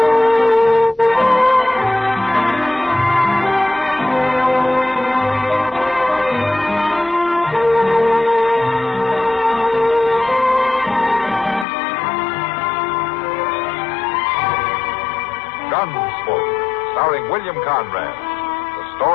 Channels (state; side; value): drops out; right; at 11.7 s